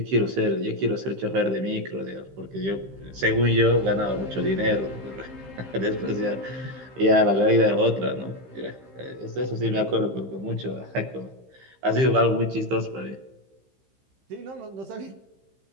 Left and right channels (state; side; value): late; left; 15 ms